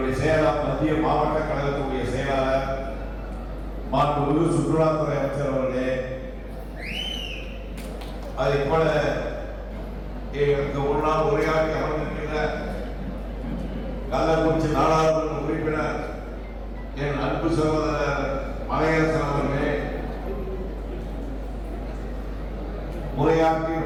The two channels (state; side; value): identical; both; correlation 1.00